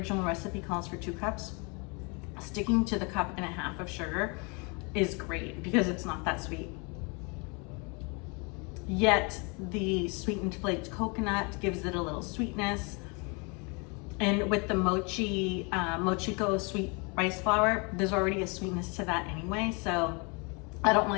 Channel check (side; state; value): right; quieter; 31.6 dB